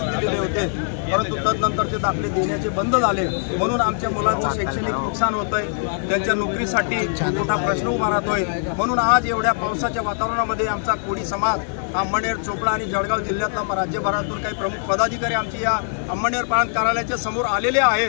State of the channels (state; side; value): silent; right; digital silence